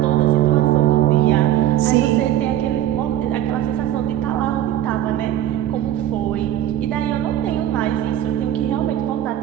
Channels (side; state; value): left; quieter; 12.4 dB